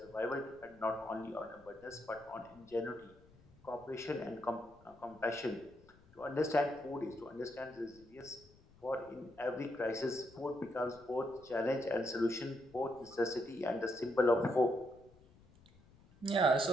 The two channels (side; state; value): left; noise; rumble, 26 dB below the sound